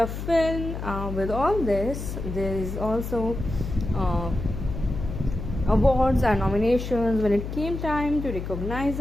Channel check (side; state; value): left; noise; hum, 6 dB below the sound